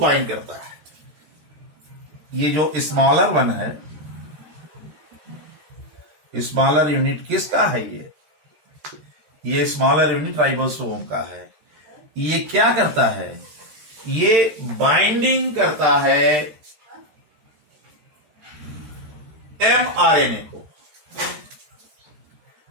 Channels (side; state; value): left; late; 13 ms